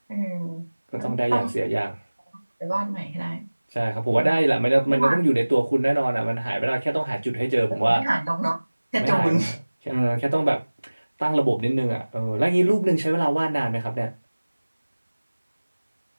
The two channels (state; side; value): inverted; both; correlation -1.00